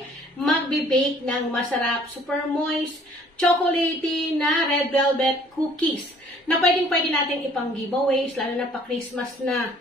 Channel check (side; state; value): both; normal; correlation 0.56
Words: magbe-bake ng masarap, super moist, chocolatey na red velvet cookies na pwedeng-pwede natin ipang giveaways, lalo na pa Christmas na.